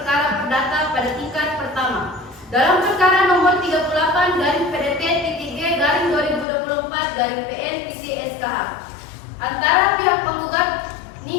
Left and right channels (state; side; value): drops out; right; at 6.5 s